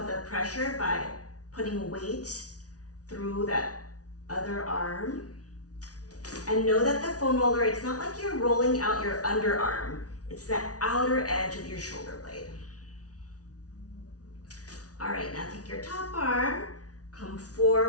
the pressure by putting weight through that other arm. And know that the foam roller, it's not like you're rolling out your underarm. It's that outer edge of your shoulder blade. All right, now take your top arm, come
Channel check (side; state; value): right; late; 0.68 ms